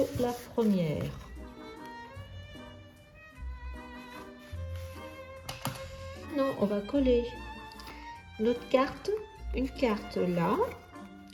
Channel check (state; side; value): identical; both; correlation 1.00